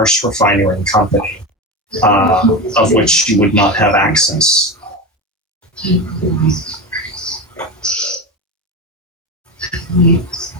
refinery company, of which you would not have access.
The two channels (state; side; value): normal; both; correlation 0.21